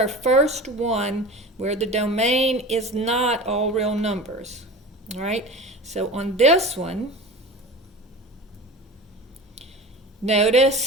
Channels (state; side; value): normal; both; correlation 0.34